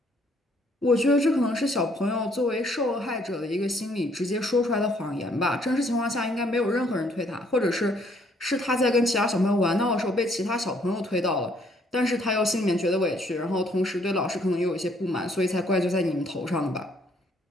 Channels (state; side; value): normal; both; correlation 0.66